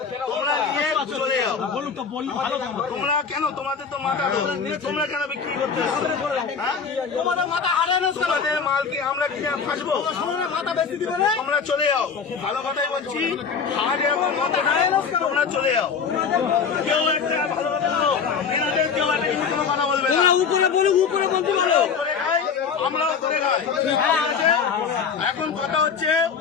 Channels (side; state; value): right; quieter; 6.1 dB